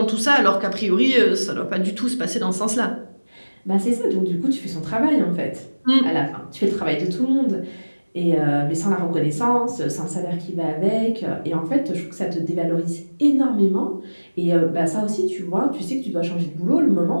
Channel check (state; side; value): inverted; both; correlation -1.00